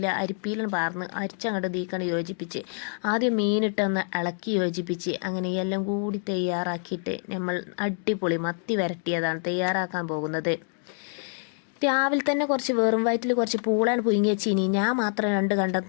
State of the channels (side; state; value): right; silent; 56 dB below the other